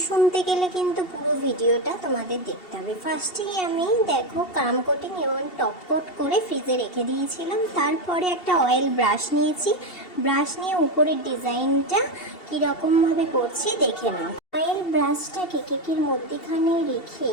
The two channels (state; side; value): late; right; 2.7 ms